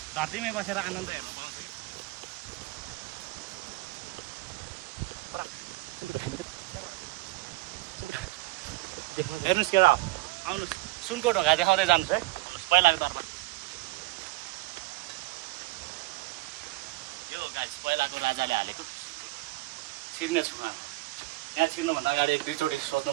धरतीमै बसेर आनन्द हेर्नु हेर्नुहोस् केटा आउनुहोस् सुनको ढोका देखाउँदै जानुहोस् है आउनुहोस् पहिलाको दरबार यो गाइस पहिलाको राजाले हालेको छिर्ने छु यहाँ छिर्नुभन्दा अगाडि एक दुईचोटि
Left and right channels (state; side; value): quieter; left; 21.1 dB